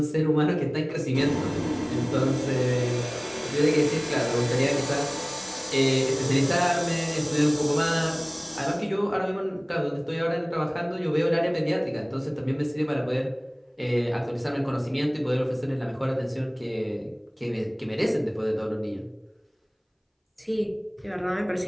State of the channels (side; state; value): both; identical; correlation 1.00